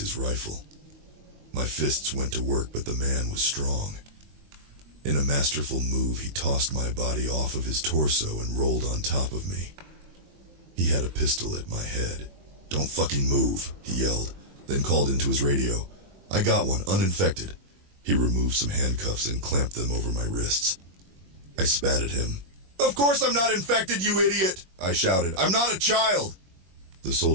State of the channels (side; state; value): left; late; 21 ms